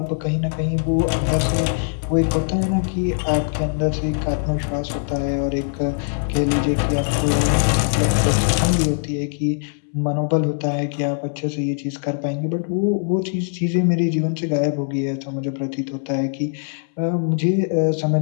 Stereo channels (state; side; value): silent; right; 65 dB below the other